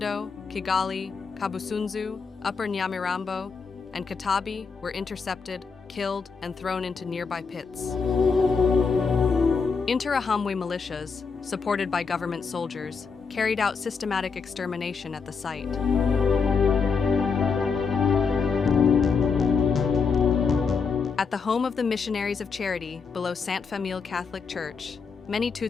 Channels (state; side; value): quieter; right; 5.3 dB